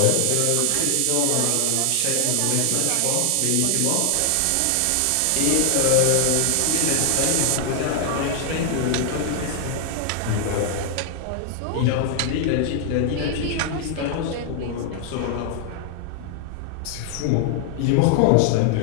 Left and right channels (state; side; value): different; both; correlation 0.00